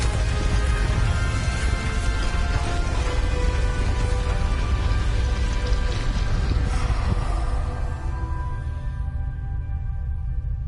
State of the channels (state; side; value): identical; both; correlation 1.00